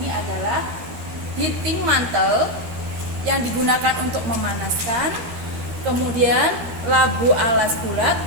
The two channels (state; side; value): late; left; 13 ms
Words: adalah heating mantle yang digunakan untuk memanaskan, kemudian labu alas bulat